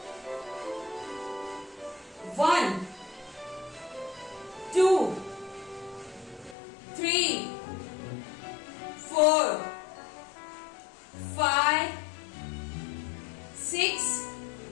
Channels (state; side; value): drops out; right; at 6.6 s